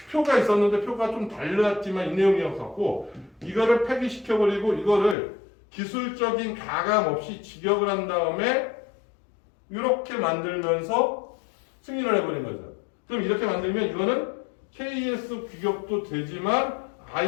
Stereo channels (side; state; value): right; drops out; at 5.2 s